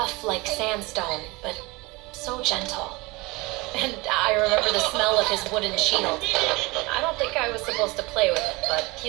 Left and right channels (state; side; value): quieter; left; 24.0 dB